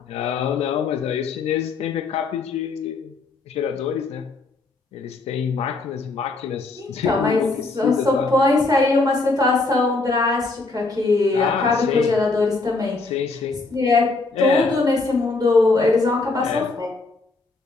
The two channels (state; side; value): quieter; right; 3.6 dB